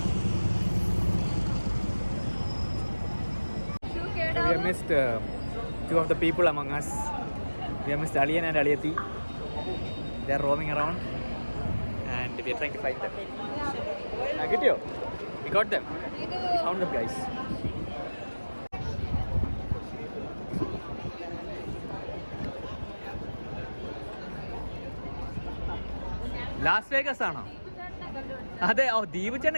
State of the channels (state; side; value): inverted; both; correlation -1.00